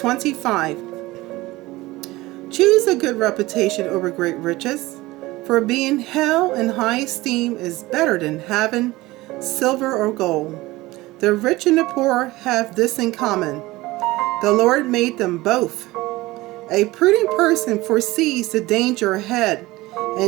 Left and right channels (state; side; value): quieter; left; 19.4 dB